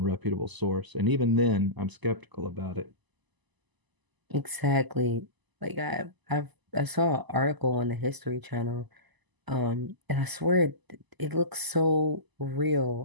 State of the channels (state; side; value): late; left; 1.0 ms